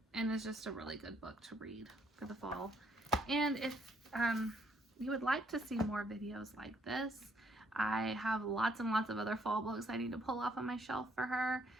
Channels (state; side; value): normal; both; correlation 0.68